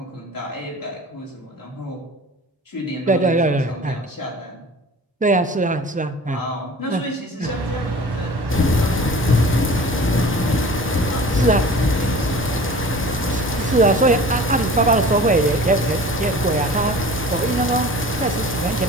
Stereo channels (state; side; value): normal; both; correlation 0.42